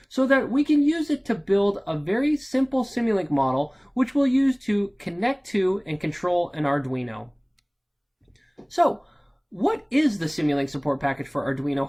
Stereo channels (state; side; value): identical; both; correlation 1.00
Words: so that we can use it to build a very simple Simulink model which we'll use to connect to and control an Arduino. So, what is the Simulink support package for Arduino